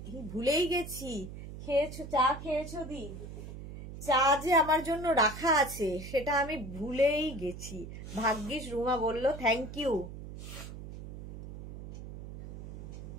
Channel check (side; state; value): right; noise; hum, 11 dB below the sound